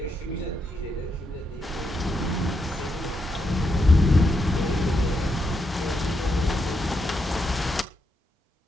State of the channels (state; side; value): normal; both; correlation 0.81